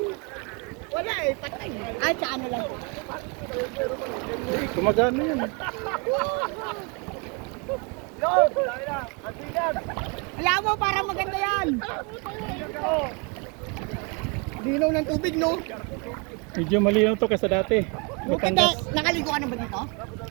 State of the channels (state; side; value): quieter; left; 32.3 dB